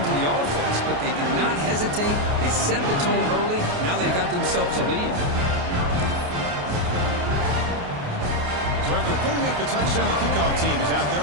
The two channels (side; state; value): left; late; 28 ms